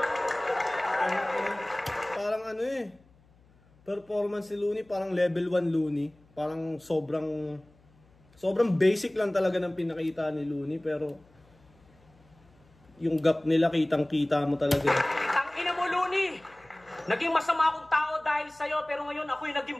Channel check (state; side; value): noise; left; hum, 30 dB below the sound